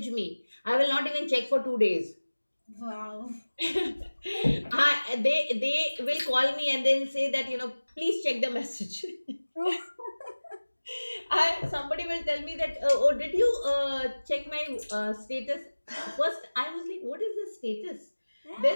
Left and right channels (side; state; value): both; inverted; correlation -1.00